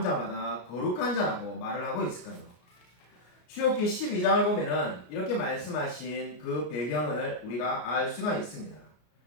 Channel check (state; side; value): late; right; 33 ms